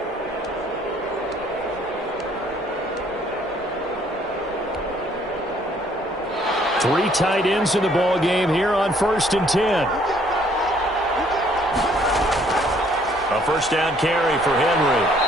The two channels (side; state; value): both; normal; correlation 0.63